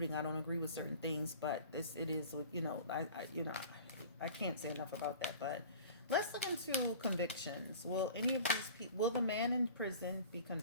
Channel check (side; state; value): both; inverted; correlation -0.43